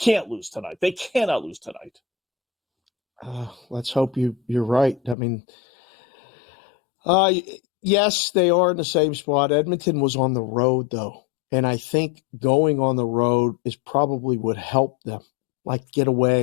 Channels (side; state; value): right; drops out; at 5.2 s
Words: lose tonight. They cannot lose tonight. Let's hope you're right. I mean, yes, they are in the same spot. Edmonton was on the road, though. And I think going on the road is probably would help them. Like, get